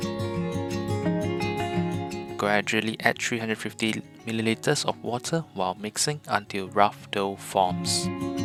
Gradually add 350 milliliters of water while mixing until rough dough forms.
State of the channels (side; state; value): both; identical; correlation 1.00